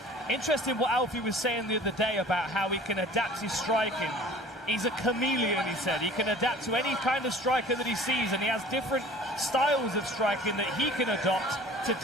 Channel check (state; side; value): normal; both; correlation 0.46